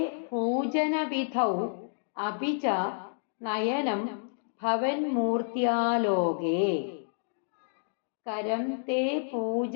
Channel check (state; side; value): silent; right; digital silence